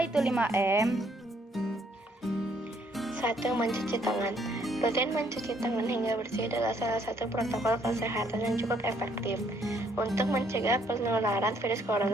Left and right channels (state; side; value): normal; both; correlation 0.67